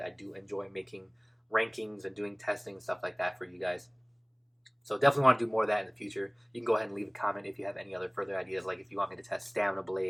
I do enjoy making rankings and doing testing and stuff like that for you guys. So definitely want to do more of that in the future. You can go ahead and leave a comment if you have any other further ideas, like if you want me to test stamina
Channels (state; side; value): identical; both; correlation 1.00